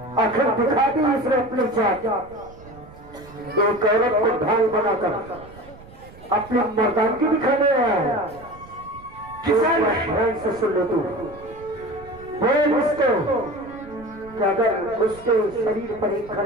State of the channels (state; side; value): noise; right; rumble, 21 dB below the sound